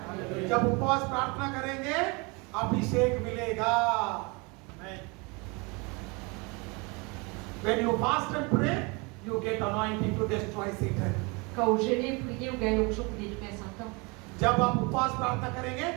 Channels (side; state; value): left; quieter; 28.6 dB